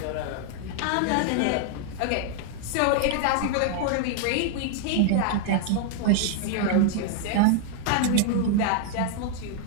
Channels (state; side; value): different; both; correlation 0.00